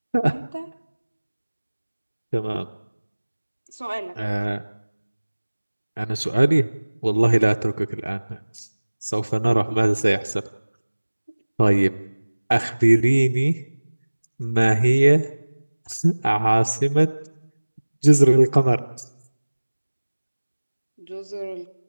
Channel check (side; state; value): both; inverted; correlation -1.00